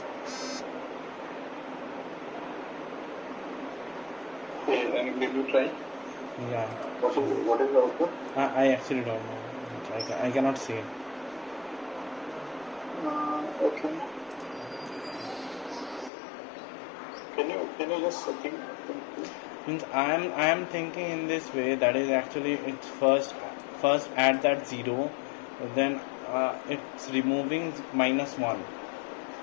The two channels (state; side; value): drops out; right; at 16.1 s